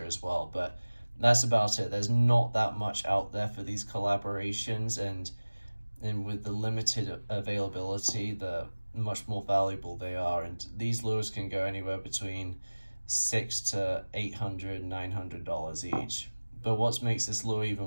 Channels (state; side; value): inverted; both; correlation -1.00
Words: as well. But that's about it. There's not that much out there for these collaborations, and with the limited availability, the much more valuable they are. And these lures can go anywhere between $600 to $800, $900 each. But what makes this lure even